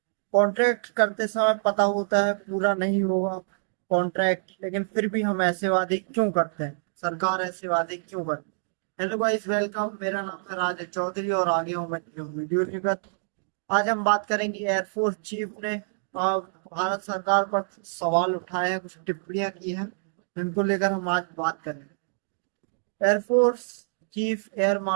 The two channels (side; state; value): left; silent; digital silence